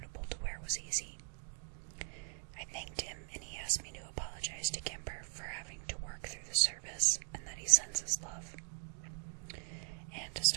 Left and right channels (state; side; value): silent; left; 51 dB below the other